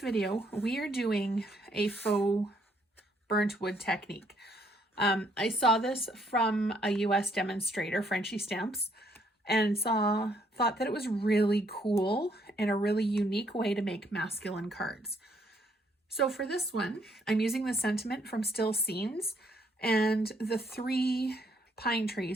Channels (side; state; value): both; normal; correlation 0.69